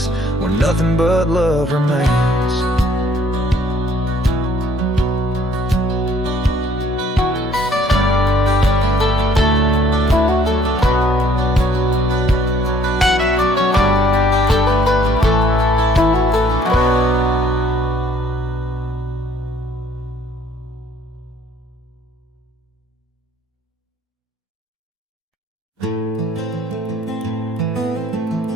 where nothing but love remains.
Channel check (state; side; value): normal; both; correlation 0.61